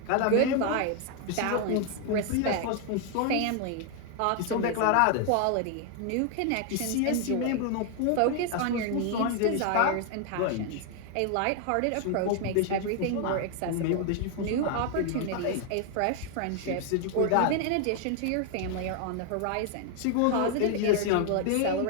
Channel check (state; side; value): different; both; correlation 0.00